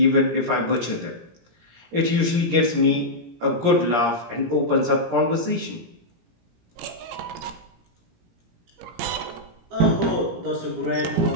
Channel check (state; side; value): late; left; 17 ms